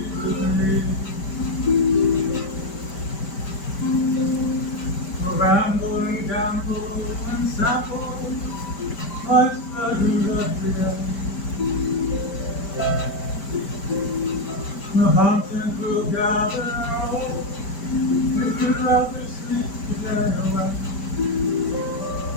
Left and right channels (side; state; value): right; late; 5.1 ms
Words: with me. We'll ramble and gamble and sample life's pleasures every day. We'll hunt and we'll gather all if you'd rather sleep today away.